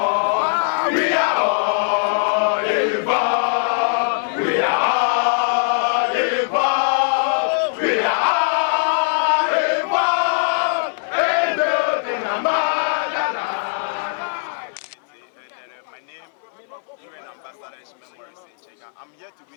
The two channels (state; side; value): silent; right; 63 dB below the other